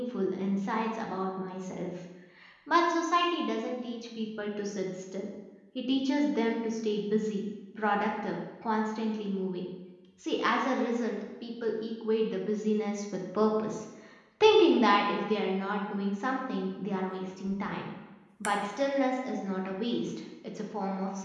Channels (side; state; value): both; identical; correlation 1.00